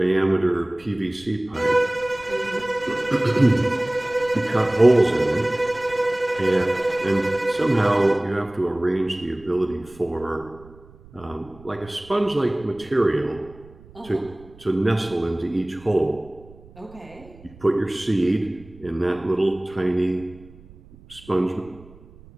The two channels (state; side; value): noise; right; rumble, 23 dB below the sound